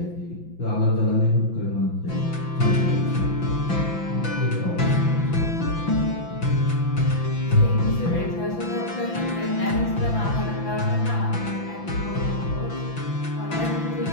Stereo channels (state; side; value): late; right; 5.9 ms